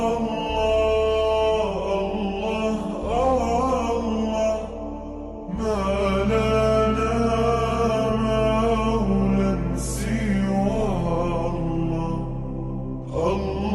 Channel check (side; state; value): both; identical; correlation 1.00